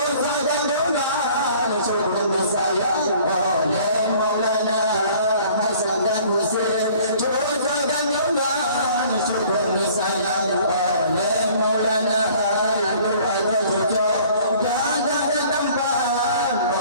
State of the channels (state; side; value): inverted; both; correlation -0.53